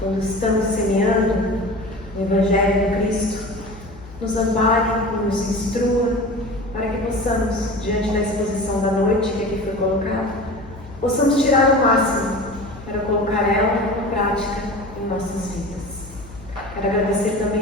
estamos semeando o Evangelho do Cristo, nos ampare e nos instrua para que possamos, diante da exposição da noite que aqui foi colocada, possamos tirar o máximo para colocar ela em prática em nossas vidas. Quero agradecer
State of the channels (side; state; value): left; noise; hum, 18 dB below the sound